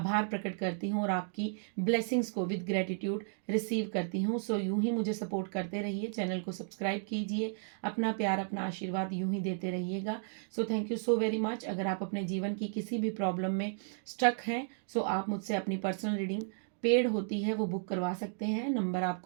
प्रकट करती हूँ और आपकी ब्लेसिंग्स को विद ग्रेटिट्यूड रिसीव करती हूँ। सो यूं ही मुझे सपोर्ट करते रहिए, चैनल को सब्सक्राइब कीजिए, अपना प्यार, अपना आशीर्वाद यूं ही देते रहिएगा। सो thank you so very much. अगर आप अपने जीवन की किसी भी प्रॉब्लम में स्टक हैं, सो आप मुझसे अपनी पर्सनल रीडिंग पेड होती है वो बुक करवा सकते हैं। नंबर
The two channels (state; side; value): silent; left; digital silence